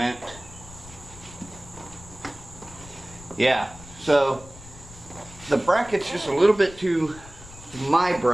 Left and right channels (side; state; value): left; noise; rumble, 18 dB below the sound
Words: Yeah, so the bracket's just a little bit too, my